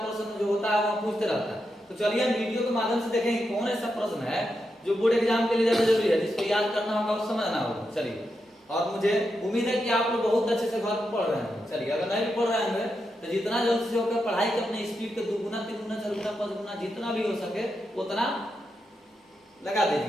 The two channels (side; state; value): both; normal; correlation 0.86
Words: प्रश्न जो होता है वह पूछते रहता है। तो चलिए हम वीडियो के माध्यम से देखेंगे कौन ऐसा प्रश्न है जो बोर्ड एग्जाम के लिए ज्यादा जरूरी है, जिसको याद करना होगा और समझना होगा। चलिए, और मुझे उम्मीद है कि आप लोग बहुत अच्छे से घर पर पढ़ रहे हैं। चलिए, अगर नहीं भी पढ़ रहे हैं तो जितना जल्द से होकर पढ़ाई के अपने स्पीड के 2 गुना 3 गुना 4 गुना 5 गुना जितना भी हो सके उतना लगा